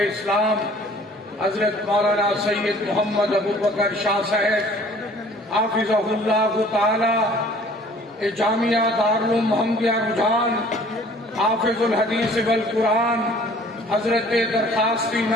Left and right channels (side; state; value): both; normal; correlation 0.53